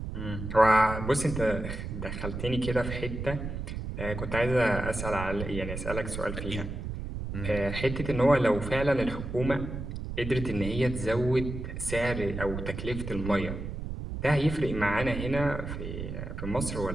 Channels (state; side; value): noise; right; rumble, 6 dB below the sound